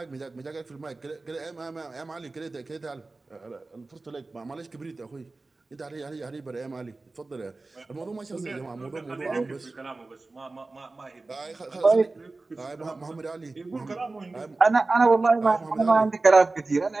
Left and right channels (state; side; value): quieter; left; 3.4 dB